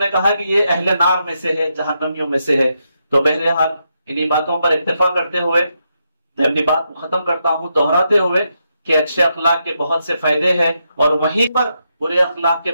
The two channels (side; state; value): both; inverted; correlation -0.82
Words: کہا کہ یہ اہل نار میں سے ہے، جہنمیوں میں سے ہے. تو بہرحال انہی باتوں پر اتفاق کرتے ہوئے میں اپنی بات کو ختم کرتا ہوں، دہراتے ہوئے کہ اچھے اخلاق کے بہت سے فائدے ہیں اور وہیں پر برے اخلاق کے